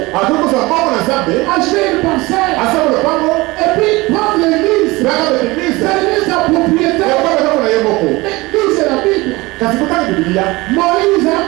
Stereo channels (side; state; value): left; quieter; 22.0 dB